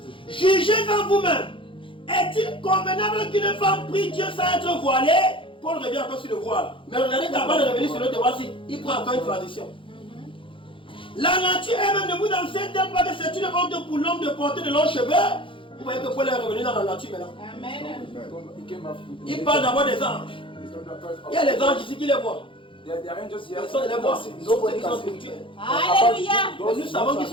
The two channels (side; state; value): right; late; 0.25 ms